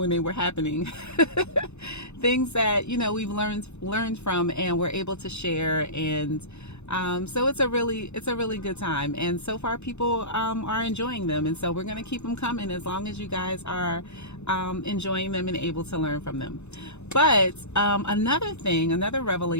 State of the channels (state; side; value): late; right; 0.81 ms